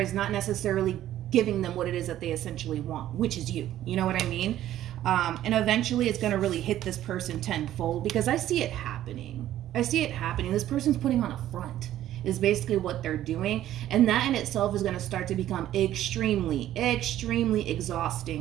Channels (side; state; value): left; quieter; 12.8 dB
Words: not necessarily giving them what it is that they essentially want, which is you. You know what I mean? And eventually it's going to really hit this person tenfold, because I see it happening. I see it happening. This person's putting on a front is basically what they're doing. And that in itself is going to start to become extremely, extremely